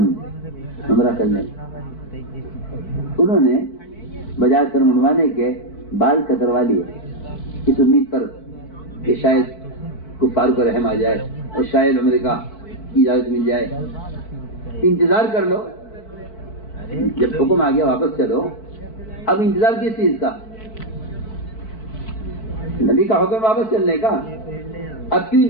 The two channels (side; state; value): right; late; 4.6 ms